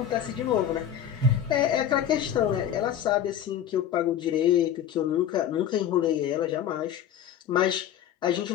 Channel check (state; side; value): quieter; right; 9.6 dB